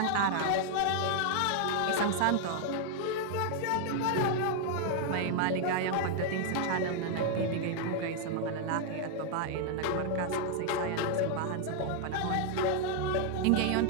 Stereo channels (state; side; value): different; both; correlation 0.00